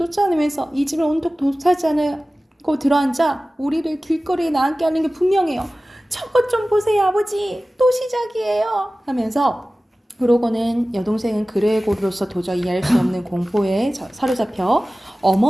이 집을 온통 도차지 않고 들어앉아 우리를 길거리에 나앉게 하는 게 분명해요. 저것 좀 보세요, 아버지. 또 시작이에요. 하면서 그러고는 여동생은 그레고르로서 도저히 이해할 수 없는 공포에 사로잡혀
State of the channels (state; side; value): normal; both; correlation 0.97